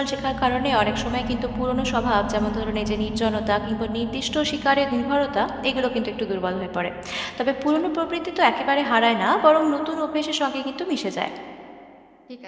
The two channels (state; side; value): identical; both; correlation 1.00